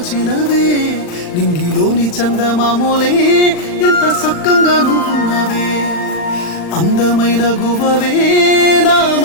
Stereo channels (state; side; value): late; right; 39 ms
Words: నింగిలోని చందమామోలే ఎంత సక్కంగా నువ్వున్నవే. అందమైన గువ్వవే నా